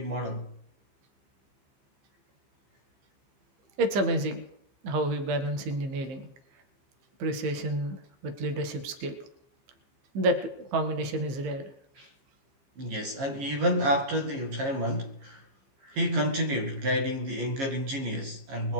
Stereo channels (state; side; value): late; left; 15 ms